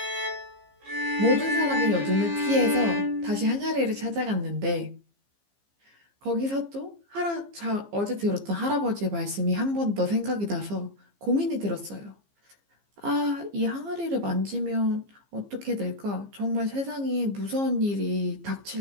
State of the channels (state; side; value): late; left; 15 ms